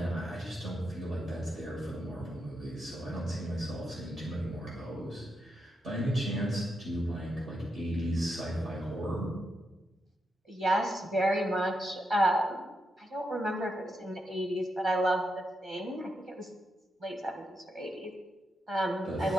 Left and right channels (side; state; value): both; normal; correlation 0.84